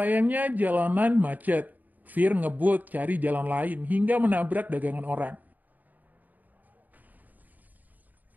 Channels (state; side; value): late; left; 0.082 ms